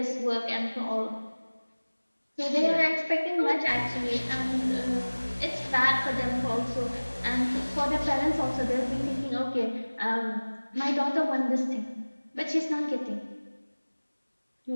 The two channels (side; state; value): both; inverted; correlation -1.00